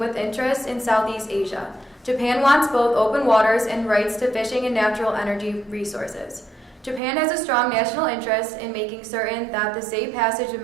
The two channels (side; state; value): left; drops out; at 7.0 s